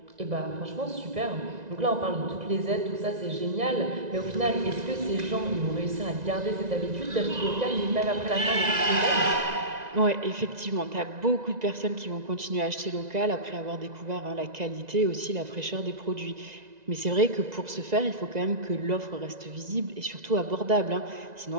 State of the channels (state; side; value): late; left; 1.9 ms